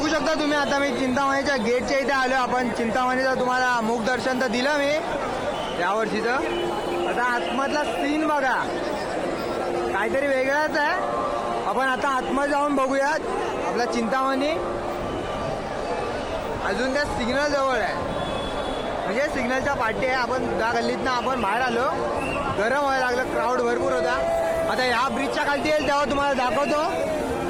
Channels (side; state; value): both; identical; correlation 1.00